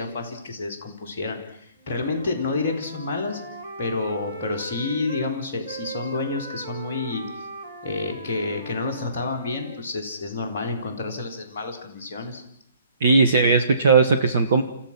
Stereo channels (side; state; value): both; inverted; correlation -0.57